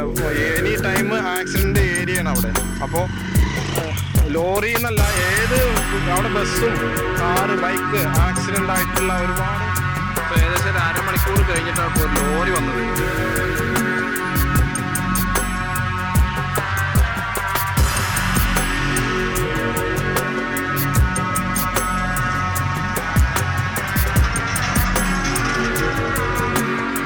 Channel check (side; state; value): both; identical; correlation 1.00